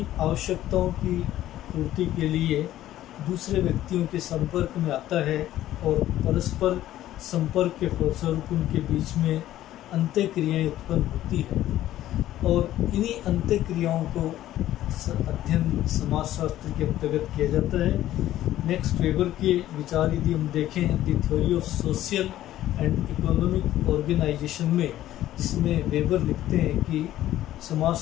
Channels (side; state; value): right; quieter; 13.6 dB